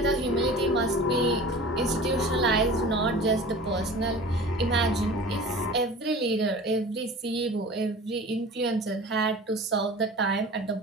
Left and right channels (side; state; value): both; normal; correlation 0.39